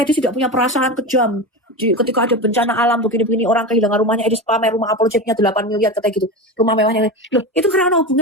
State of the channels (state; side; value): normal; both; correlation 0.23